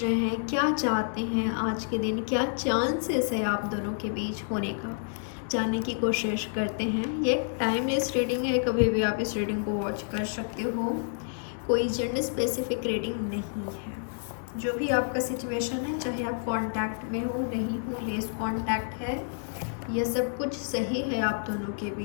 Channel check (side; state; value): right; silent; digital silence